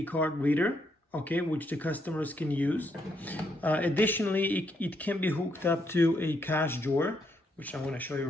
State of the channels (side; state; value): both; normal; correlation 0.76